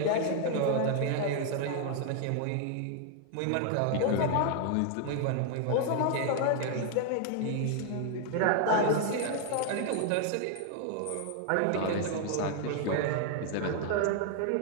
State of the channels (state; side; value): different; both; correlation 0.00